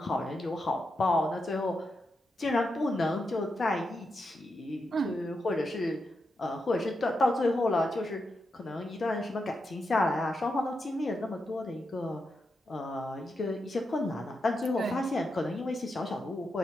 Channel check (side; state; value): both; normal; correlation 0.86